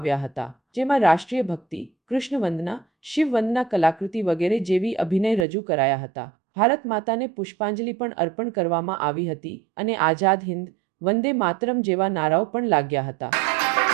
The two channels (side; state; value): left; drops out; at 5.5 s